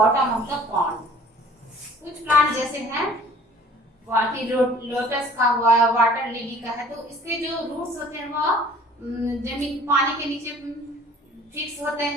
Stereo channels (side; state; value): both; normal; correlation 0.50